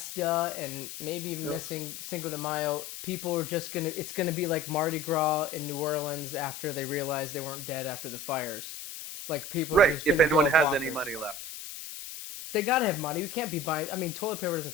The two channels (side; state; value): left; noise; hiss, 10 dB below the sound